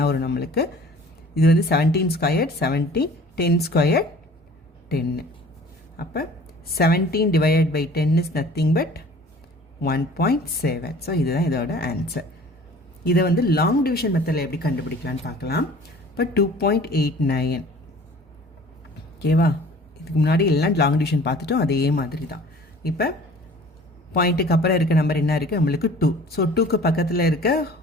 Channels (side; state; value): both; normal; correlation 0.48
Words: வரும் நம்மளுக்கு? இது வந்து 17 ஸ்கொயர் 17, 10 ஸ்கொயர் 10. அப்போ 17 divided by 10 is nothing but 1.7. So இதுதான் இதோட ஆன்சர். இதை வந்து லாங் டிவிஷன் மெத்தடில் எப்படி கண்டுபிடிக்கலான்னு பார்க்கலாம். இப்போ 2.89 ஓகேவா, இதுக்கு முன்னாடி எல்லாம் லாங் டிவிஷன் பார்த்துட்டோம், அதே மாதிரி தான். இப்போ பாயிண்ட்டுக்கு அப்புறம் இருக்க நம்பர் என்ன இருக்குது நம்மளுக்கு 2. ஸோ 2க்கு பக்கத்தில் இருக்க